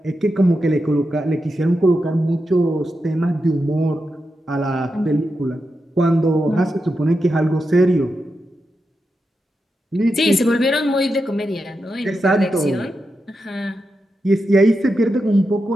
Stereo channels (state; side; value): normal; both; correlation 0.88